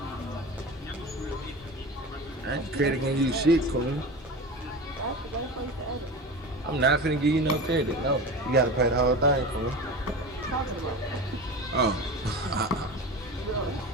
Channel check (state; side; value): normal; both; correlation 0.30